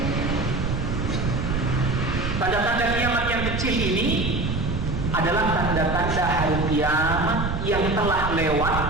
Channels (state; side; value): noise; right; rumble, 4 dB below the sound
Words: Tanda-tanda kiamat yang kecil ini adalah tanda-tanda hari kiamat yang telah lewat,